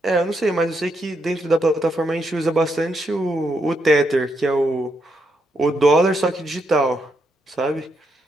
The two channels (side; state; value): both; normal; correlation 0.80